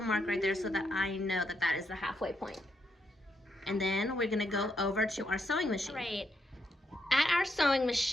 right there so that I know that that is the halfway point. And then we're gonna go over to our sewing machine. Right. At our sewing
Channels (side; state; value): both; normal; correlation 0.79